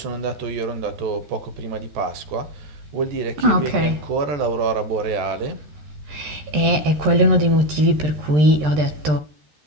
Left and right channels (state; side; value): late; left; 13 ms